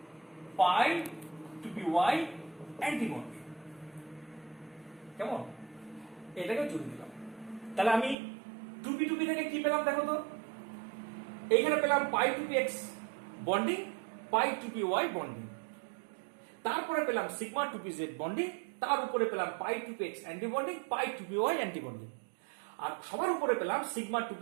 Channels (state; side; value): drops out; left; at 8.2 s